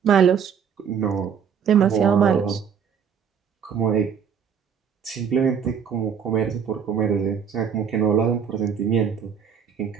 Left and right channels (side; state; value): left; quieter; 7.3 dB